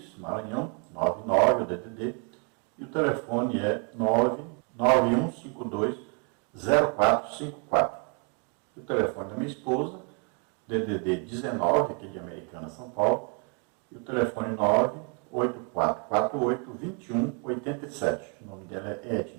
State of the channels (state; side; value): quieter; left; 37.7 dB